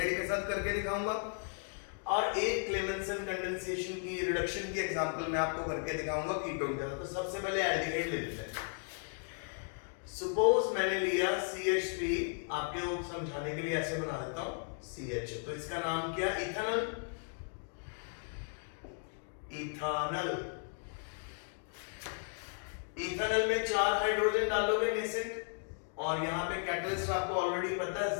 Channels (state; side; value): silent; right; 54 dB below the other